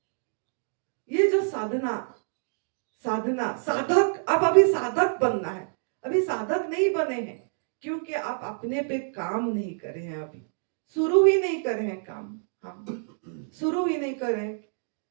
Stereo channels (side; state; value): left; silent; digital silence